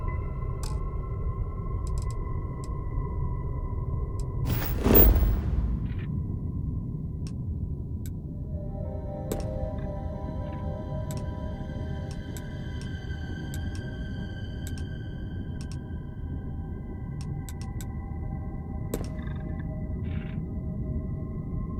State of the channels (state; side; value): identical; both; correlation 1.00